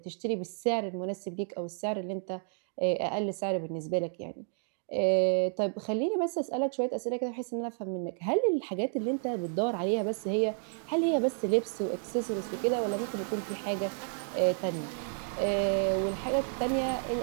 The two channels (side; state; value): left; silent; 57 dB below the other